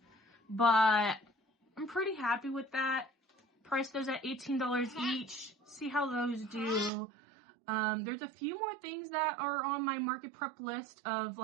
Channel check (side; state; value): left; drops out; at 6.9 s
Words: But I'm pretty happy with that. Price those at $18 each. See how those do. There's a few more things that are on my market prep list of